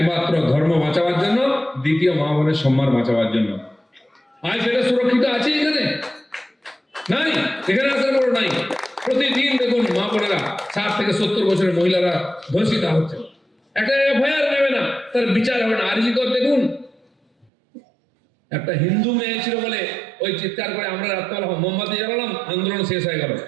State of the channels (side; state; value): left; drops out; at 17.5 s